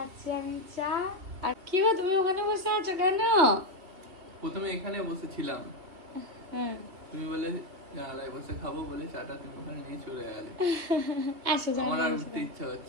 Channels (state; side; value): late; left; 2.6 ms